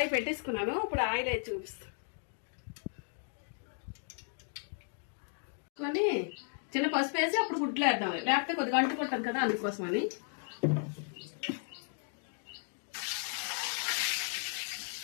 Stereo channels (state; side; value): silent; right; 54 dB below the other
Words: పెట్టేసుకున్నాను, ఇప్పుడు ఆయిల్ వేసి చూపిస్తాను. చిన్న పసుపు వేసి అప్పుడు గుడ్లు వేద్దాం, లేకపోతే కొద్దిగా అంటుకుంటాం కదా, అందుకోసమని.